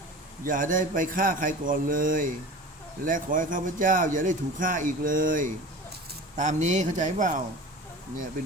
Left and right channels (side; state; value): both; normal; correlation 0.36